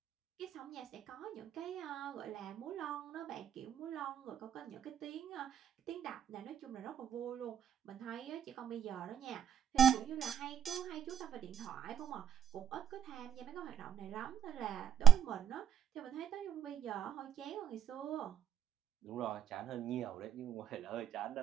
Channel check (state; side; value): quieter; left; 9.5 dB